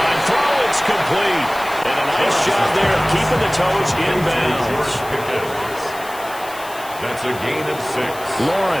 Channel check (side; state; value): left; noise; hiss, 16 dB below the sound